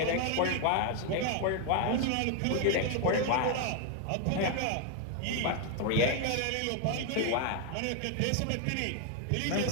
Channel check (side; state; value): both; different; correlation 0.01